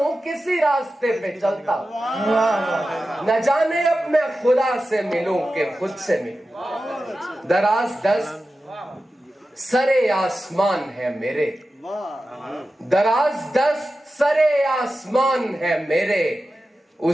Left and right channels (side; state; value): both; normal; correlation 0.93